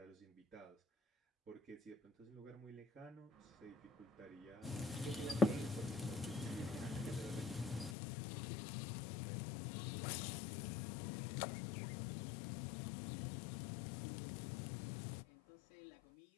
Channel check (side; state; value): right; drops out; at 8.0 s